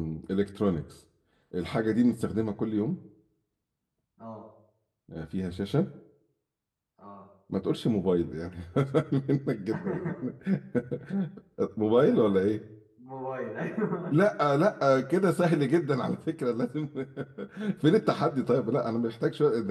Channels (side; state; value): both; identical; correlation 1.00